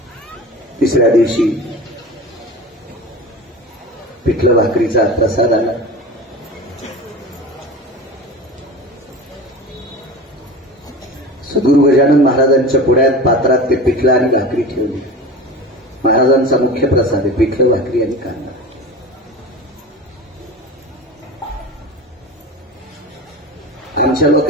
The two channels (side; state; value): both; normal; correlation 0.32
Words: तिसऱ्या दिवशी पिठलं भाकरीचा प्रसाद आला. सद्गुरू गजानन महाराजांच्या पुढ्यात पात्रात ते पिठलं आणि भाकरी ठेवली. महाराजांचा मुख्य प्रसाद आहे पिठलं भाकरी आणि कांदा. आमच्या